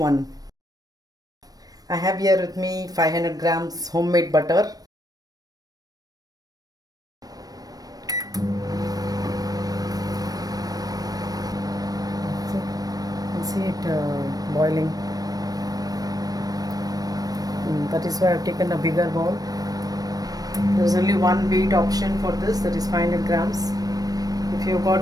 I have here with me 500 grams homemade butter. You can see it boiling. That is why I've taken a bigger bowl. There's only one weight option for this, that is 500 grams. If you've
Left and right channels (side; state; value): left; late; 0.18 ms